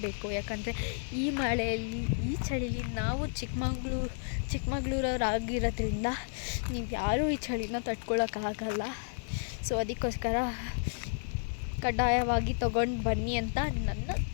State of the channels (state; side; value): silent; right; digital silence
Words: ಯಾಕಂದರೆ ಈ ಮಳೆಯಲ್ಲಿ, ಈ ಚಳಿಲಿ ನಾವು ಚಿಕ್ಕಮಂಗ್ಳೂರವರಾಗಿರೋದ್ರಿಂದ ನೀವು ಯಾರೂ ಈ ಚಳಿನ ತಡ್ಕೊಳಕ್ಕಾಗಲ್ಲ. ಸೊ ಅದಕ್ಕೋಸ್ಕರ ಕಡ್ಡಾಯವಾಗಿ ತೊಗೊಂಡು ಬನ್ನಿ ಅಂತ ನನ್ನ